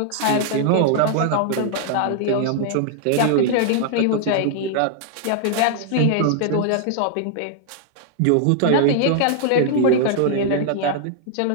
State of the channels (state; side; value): different; both; correlation -0.01